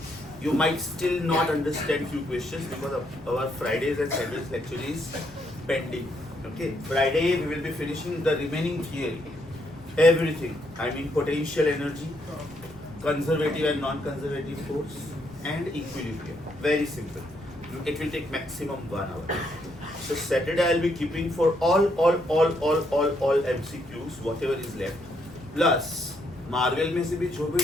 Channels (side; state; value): left; noise; rumble, 22 dB below the sound